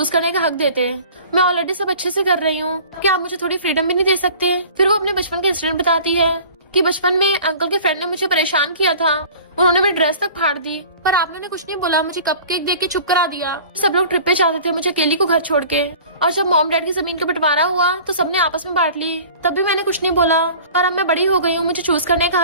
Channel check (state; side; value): inverted; both; correlation -0.44